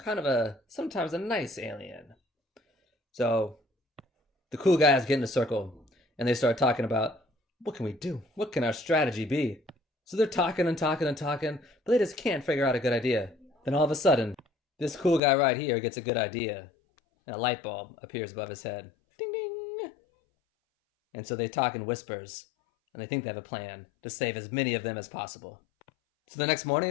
of sometimes a nice alien. So the cool guys get in a circle and they start talking about, what can we do? What can our strategy be? So they're talking and talking and talking, but they just can't figure out a good idea. Then all of a sudden, this cool guy right here gets a good idea, and a light bulb appears above his head. Ding ding! And so they talk in whispers, and they think they have a plan to save as many of them as possible. So the next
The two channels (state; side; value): drops out; right; at 15.2 s